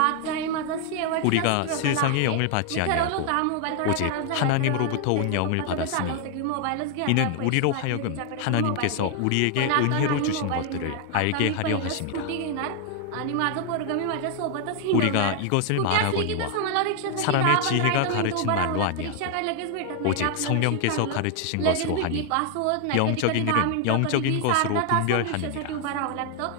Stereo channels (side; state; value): both; different; correlation 0.00